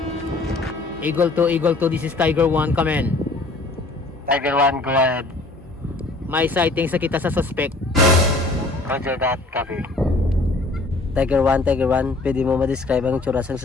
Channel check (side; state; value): right; quieter; 3.1 dB